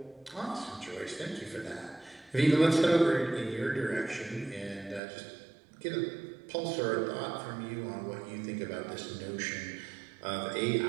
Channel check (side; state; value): left; drops out; at 5.0 s